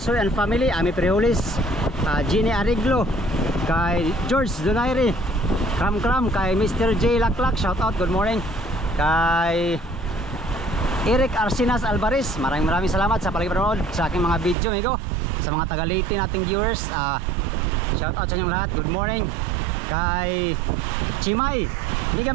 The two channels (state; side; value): drops out; left; at 14.6 s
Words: and family, Ami Prihulis, Ginny Ariglo, kay George Donaire Kram, kay Mr. J Laklak, shout out, good morning. Kay Eric Arsinas Alvarez, maraming salamat sa panonood sa aking mga video, amigo. Sa mga taga-Leyte nating viewers, shout out sa inyong lahat, good morning. Kay Chimay, hindi